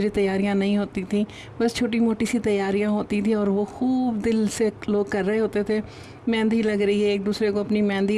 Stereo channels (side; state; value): both; identical; correlation 1.00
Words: तैयारियां नहीं होती थी, बस छोटी मोटी सी तैयारियां होती थी और वो खूब दिल से लोग कर रहे होते थे। मेहंदी लग रही है, एक दूसरे को अपनी मेहंदी